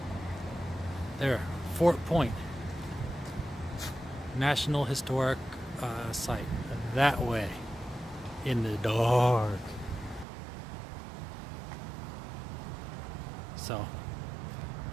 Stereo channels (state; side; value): drops out; left; at 10.2 s